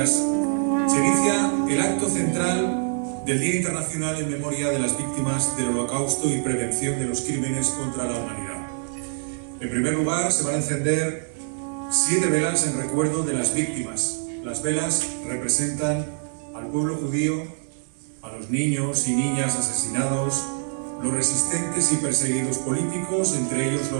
Se inicia el acto central del Día Internacional en memoria de las víctimas del Holocausto y prevención de los crímenes contra la humanidad. En primer lugar, se van a encender 7 velas en recuerdo de las víctimas. Las velas representan al pueblo judío, a los niños y niñas asesinados, los resistentes y perseguidos políticos, entre ellos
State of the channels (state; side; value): silent; left; digital silence